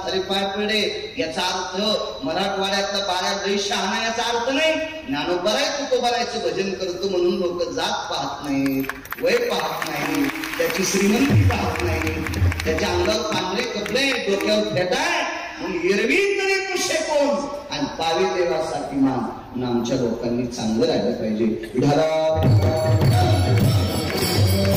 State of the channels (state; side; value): identical; both; correlation 1.00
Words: पाय पडे. याचा अर्थ मराठवाड्यातला बाळ्या दैशा आणा याचा अर्थ नाही. ज्ञानोबा आहे तो बरायचं भजन करतो म्हणून लोक जात पाहत नाही, वय पाहत नाही, त्याची श्रीमंती पाहत नाही, त्याच्या अंगावर पांढरे कपडे, डोक्यावर फेटाय म्हणून एरवी तरी कुशे कोण आणि पावी देवासाठी मान. आमच्या लोकांनी चांगलं राहिलं पाहिजे.